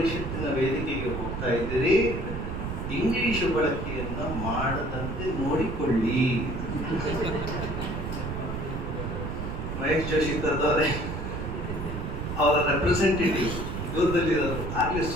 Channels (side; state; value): right; noise; rumble, 4 dB below the sound